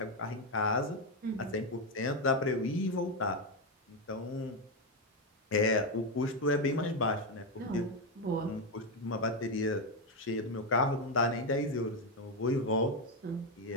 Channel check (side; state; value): both; normal; correlation 0.07